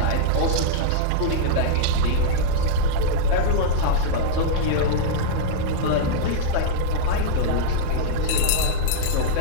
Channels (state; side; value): different; both; correlation -0.02